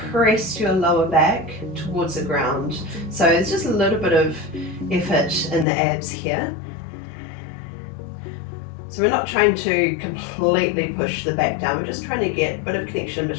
press your lower back towards the ground. So it's just a little bit of effort in the abs here. So we're not trying to completely push the back down, we're just trying to get a bit of connection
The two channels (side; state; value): right; drops out; at 5.7 s